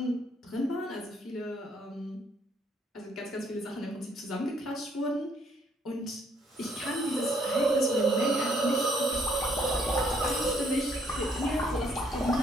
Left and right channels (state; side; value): normal; both; correlation 0.67